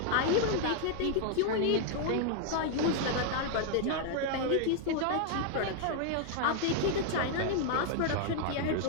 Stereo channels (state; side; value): different; both; correlation 0.00